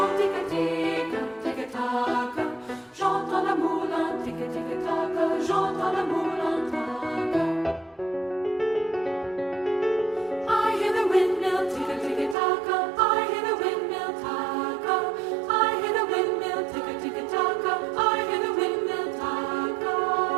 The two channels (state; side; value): drops out; left; at 12.4 s